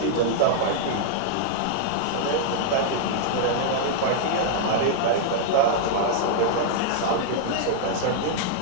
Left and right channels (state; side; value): different; both; correlation -0.01